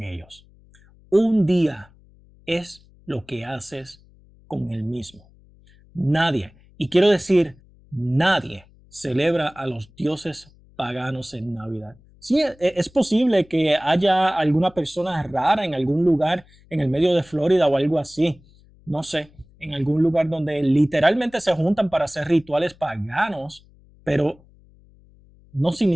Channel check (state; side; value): noise; left; hum, 28 dB below the sound